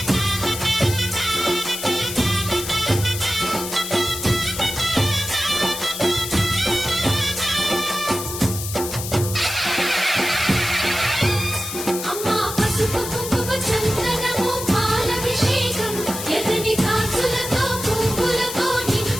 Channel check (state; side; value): noise; left; hiss, 7 dB below the sound